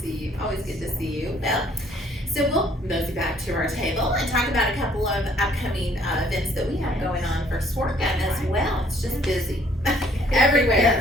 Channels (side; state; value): both; normal; correlation 0.62